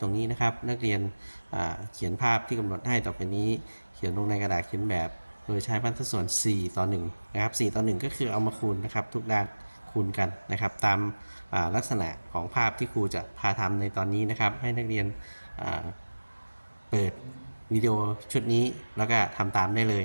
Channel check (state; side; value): inverted; both; correlation -1.00